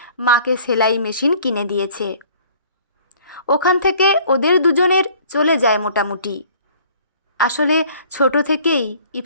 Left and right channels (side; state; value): both; inverted; correlation -0.53